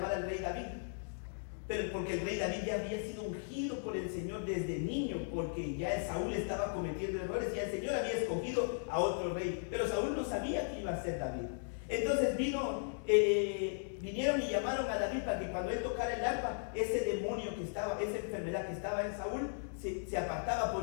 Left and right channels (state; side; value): silent; right; digital silence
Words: al rey David. Pero porque el rey David ya había sido ungido por el Señor desde niño, porque ya Saúl estaba cometiendo errores y el Señor había escogido a otro rey. Pero Saúl no sabía que iba a ser David. Entonces vinieron y llamaron a David para que cuando él tocara el arpa, ese demonio que estaba, esa enfermedad que estaba en Saúl, se apartaba por